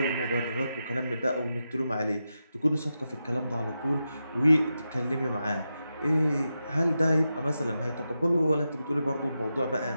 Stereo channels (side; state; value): both; inverted; correlation -0.89